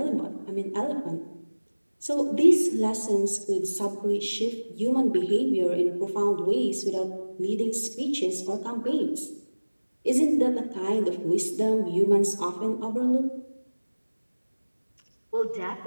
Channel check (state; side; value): inverted; both; correlation -1.00